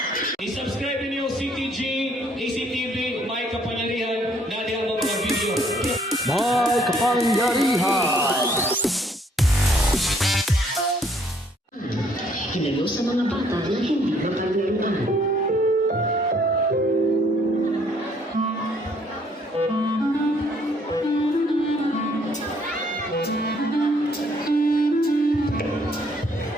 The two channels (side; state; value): both; normal; correlation 0.64